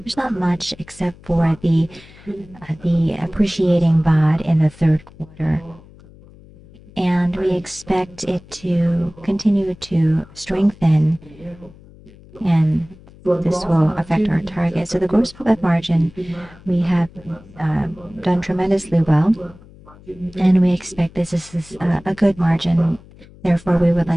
there's not much except for the appreciating baht in the third quarter. And we expect it to continue to strengthen, and this will affect our target. So the gross profit margin, we have done tremendously well, and we expect this is a good margin. Therefore, we would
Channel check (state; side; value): noise; left; hum, 23 dB below the sound